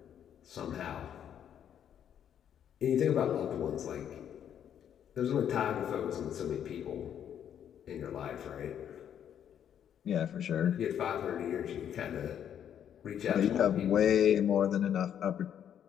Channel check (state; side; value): quieter; right; 9.3 dB